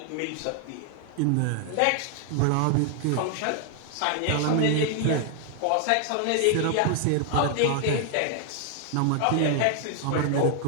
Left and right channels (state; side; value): different; both; correlation 0.00